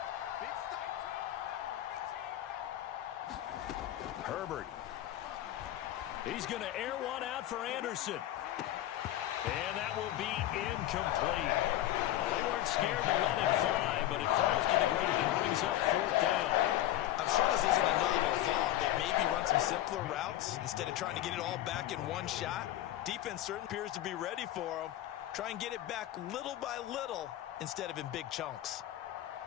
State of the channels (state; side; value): quieter; right; 13.6 dB